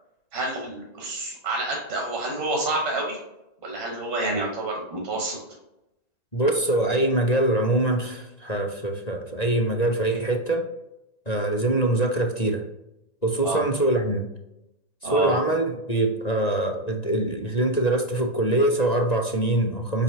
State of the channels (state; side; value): late; right; 1.9 ms